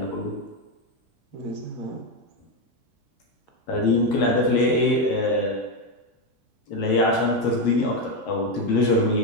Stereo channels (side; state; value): right; late; 10 ms